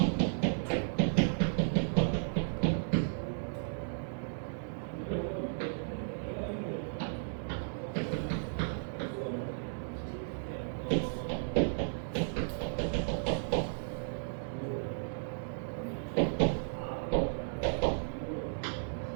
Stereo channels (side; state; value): left; silent; digital silence